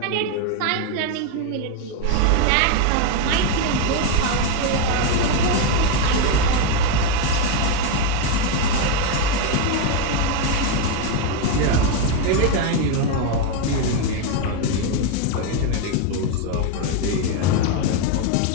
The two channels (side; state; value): both; different; correlation 0.02